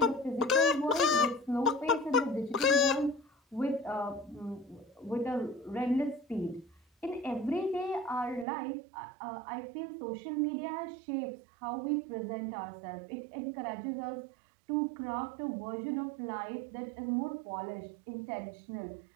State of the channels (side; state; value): left; drops out; at 8.5 s